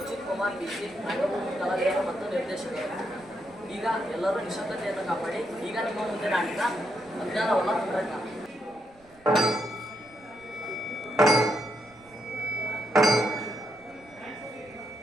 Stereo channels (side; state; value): right; noise; rumble, 28 dB below the sound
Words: ಕುಮಾರ್ ಬಿಸಿ, ರಂಗಭೂಮಿ ಕಲಾವಿದರು ಮತ್ತು ನಿರ್ದೇಶಕರು. ಈಗ ಎಲ್ಲರೂ ನಿಶಬ್ದತೆಯನ್ನು ಕಾಪಾಡಿ. ಈಗ ನಿಮ್ಮ ಮುಂದೆ ನಾಟಕ ಅಜ್ಞಾನವಲ್ಲ ತಂತ್ರಜ್ಞಾನ.